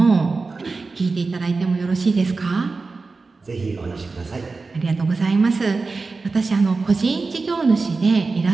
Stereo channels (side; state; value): left; quieter; 4.0 dB